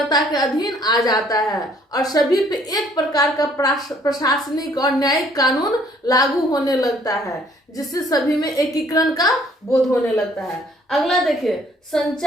के अधीन आ जाता है और सभी पे एक प्रकार का प्रशासनिक और न्यायिक कानून लागू होने लगता है, जिससे सभी में एकीकरण का बोध होने लगता है। अगला देखिए,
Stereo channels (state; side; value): normal; both; correlation 0.61